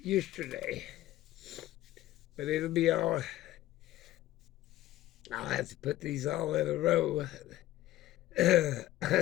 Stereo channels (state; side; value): quieter; right; 15.3 dB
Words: But it'll be all, I'll have to put these all in a row.